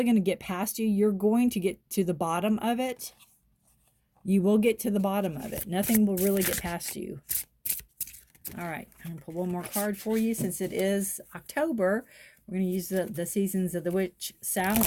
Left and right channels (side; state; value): both; identical; correlation 1.00